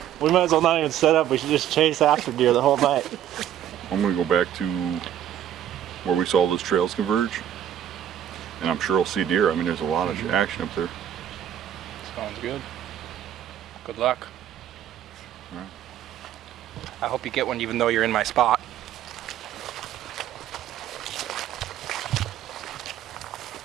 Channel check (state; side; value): quieter; left; 10.7 dB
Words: We might as well not even set up. We should just chase after deer the whole night. I'm gonna go back to where we saw those trails converge. And I'm sure I'll see deer. I mean, there's a lot of action up there. Sounds good. Good luck. All right. I hope you get one even though you're in my spot.